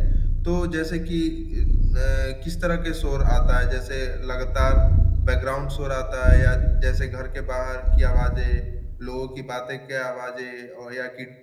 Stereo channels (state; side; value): identical; both; correlation 1.00